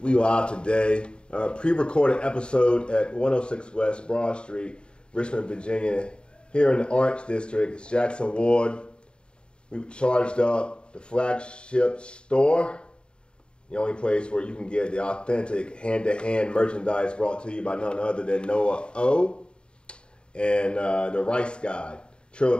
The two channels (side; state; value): right; late; 0.052 ms